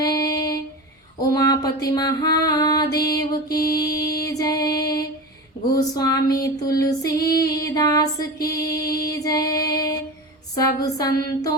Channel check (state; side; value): normal; both; correlation 0.27